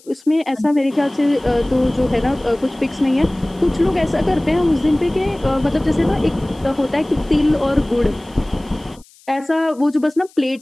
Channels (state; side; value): noise; left; hiss, 28 dB below the sound